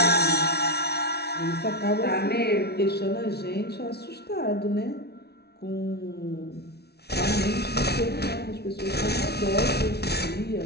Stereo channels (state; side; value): late; right; 0.48 ms